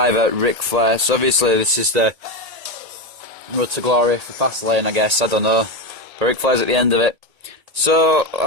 Ric Flair. So obviously this is the Road to Glory for Fastlane, I guess, I don't know. But Ric Flair's at the end of it. So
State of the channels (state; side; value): late; left; 1.8 ms